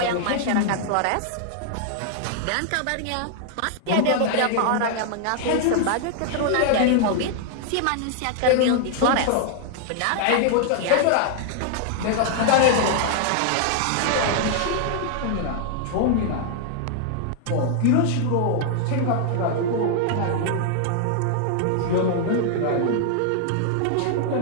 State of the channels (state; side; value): different; both; correlation 0.00